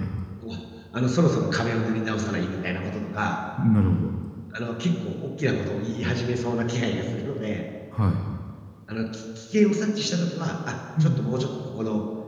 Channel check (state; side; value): identical; both; correlation 1.00